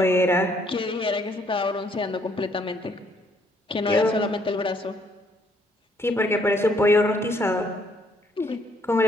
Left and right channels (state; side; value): normal; both; correlation 0.67